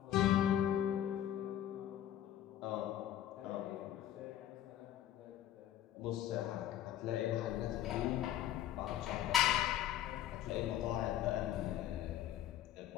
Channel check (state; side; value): quieter; right; 11.7 dB